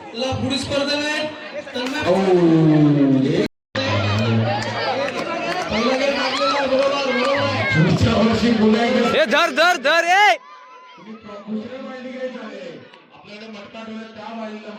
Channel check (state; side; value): identical; both; correlation 1.00